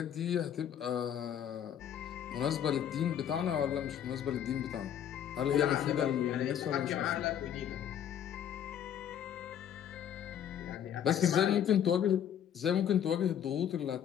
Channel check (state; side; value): quieter; right; 9.6 dB